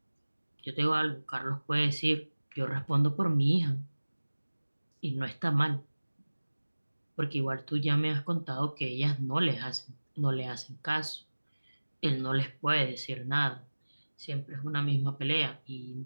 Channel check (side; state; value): both; inverted; correlation -1.00